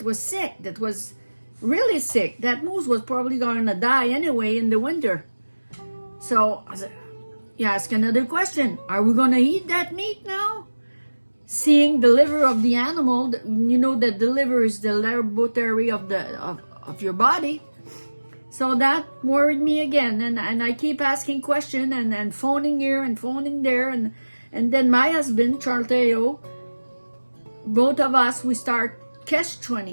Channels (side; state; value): both; inverted; correlation -1.00